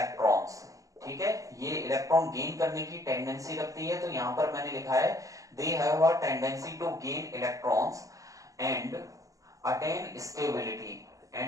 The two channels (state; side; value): late; left; 0.16 ms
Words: ठीक है, ये इलेक्ट्रॉन गेन करने की टेंडेंसी रखती है। तो यहां पर मैंने लिखा है they have a tendency to gain electrons and attain